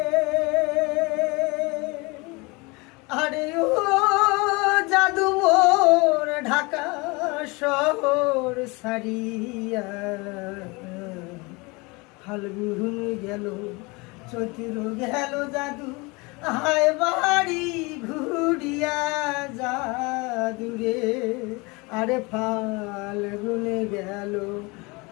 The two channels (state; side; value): quieter; right; 26.3 dB